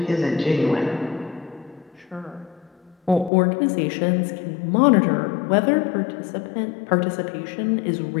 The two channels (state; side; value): drops out; right; at 3.3 s